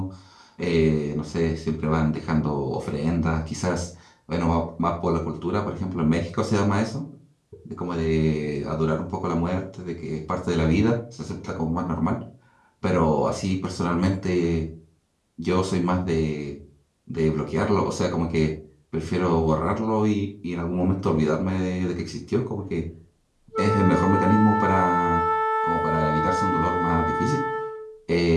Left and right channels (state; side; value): identical; both; correlation 1.00